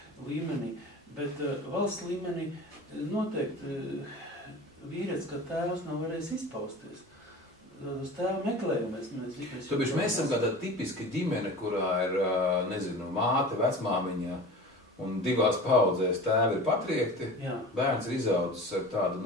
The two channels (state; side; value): normal; both; correlation 0.36